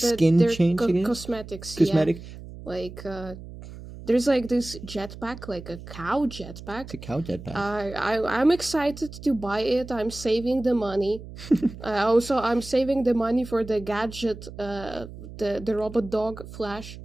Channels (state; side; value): noise; right; hum, 14 dB below the sound